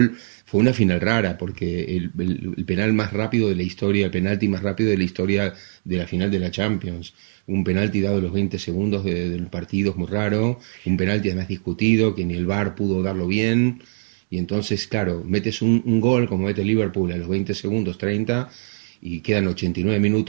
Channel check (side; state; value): left; silent; digital silence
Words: Fue una final rara porque el penal más rápido de la historia, el penalti más rápido de la historia de la final de la Champions. Un penalti dado a los 20 segundos del partido es muy raro, un penalti además discutido, que ni el VAR pudo darlo bien. Y entonces, claro, metes un gol como mete Liverpool a los 20 segundos, 30, y quedan 89